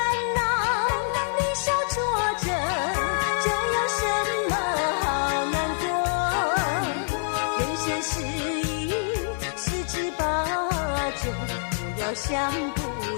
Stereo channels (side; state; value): right; silent; 61 dB below the other